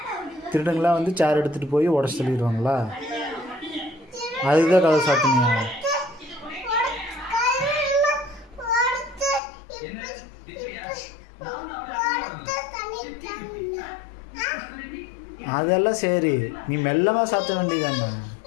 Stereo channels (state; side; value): drops out; right; at 9.4 s